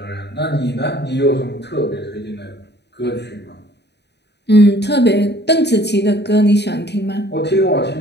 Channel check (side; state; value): right; late; 0.49 ms